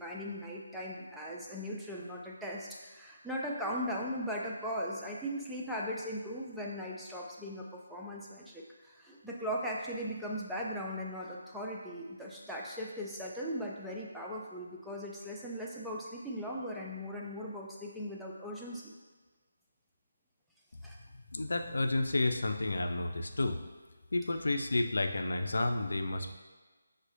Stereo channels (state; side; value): inverted; both; correlation -0.73